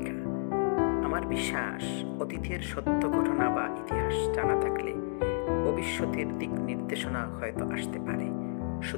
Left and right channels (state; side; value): silent; right; 57 dB below the other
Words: আমার বিশ্বাস, অতীতের সত্য ঘটনা বা ইতিহাস জানা থাকলে ভবিষ্যতের দিক নির্দেশনা হয়তো আসতে পারে।